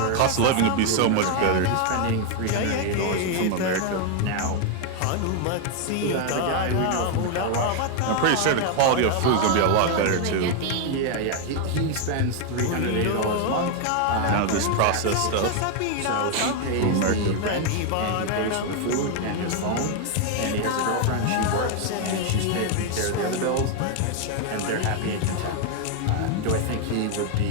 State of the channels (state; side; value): different; both; correlation 0.01